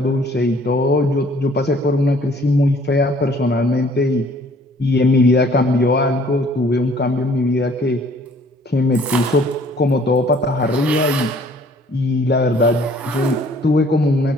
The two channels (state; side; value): normal; both; correlation 0.57